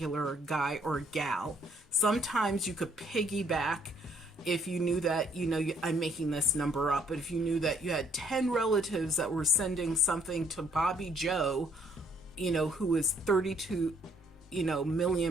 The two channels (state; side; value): normal; both; correlation 0.65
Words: guy or gal. Sometimes you could piggyback if you knew that, you know, I'm making this number up, but if you knew that you had 10 relatives that were sending something to Bobby Joe, you know, who is 32, you know,